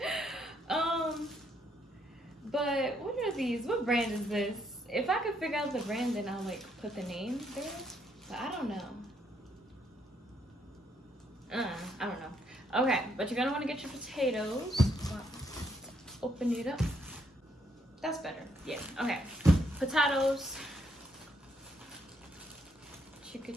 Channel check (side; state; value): both; normal; correlation 0.73